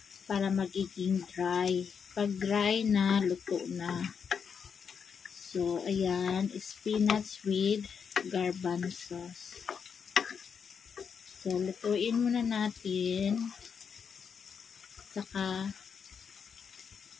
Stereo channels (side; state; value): right; quieter; 6.6 dB